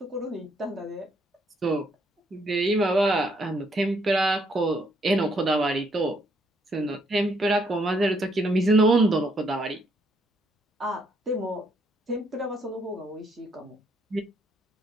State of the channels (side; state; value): both; normal; correlation 0.71